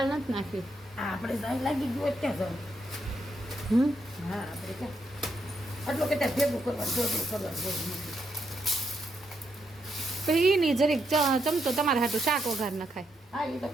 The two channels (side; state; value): both; normal; correlation 0.79